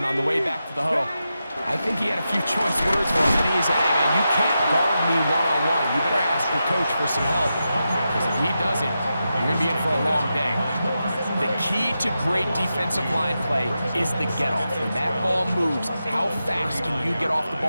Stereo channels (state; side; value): inverted; both; correlation -0.89